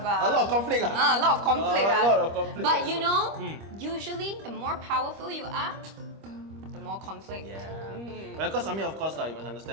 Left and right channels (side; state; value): left; late; 25 ms